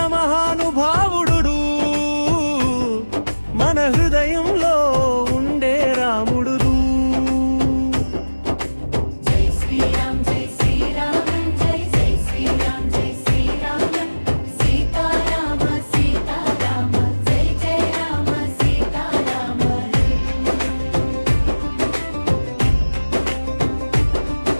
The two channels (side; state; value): both; inverted; correlation -1.00